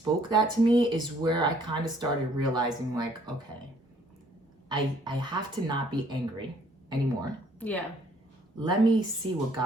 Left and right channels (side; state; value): both; normal; correlation 0.62